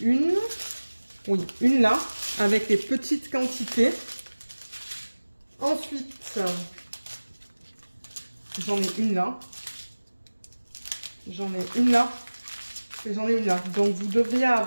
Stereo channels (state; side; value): inverted; both; correlation -1.00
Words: une. Oui, une là, avec les petites quantités. Ensuite, j'en ai une là. J'en ai une là. Et j'en ai une là. Donc, vous devriez